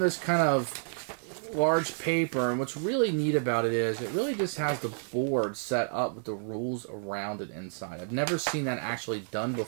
kind of large paper, and what's really neat about it is it really just has the board set up with the rules around it inside. I've never seen that actually done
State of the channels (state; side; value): silent; left; digital silence